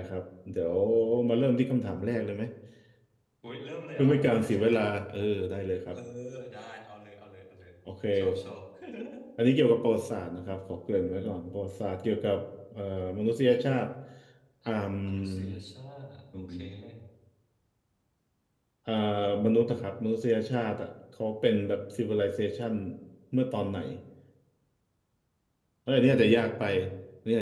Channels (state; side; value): identical; both; correlation 1.00